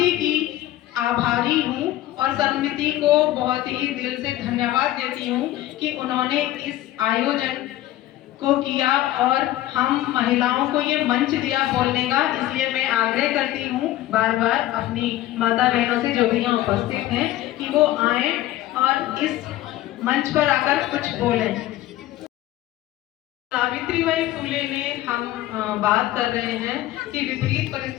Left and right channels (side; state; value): right; quieter; 14.7 dB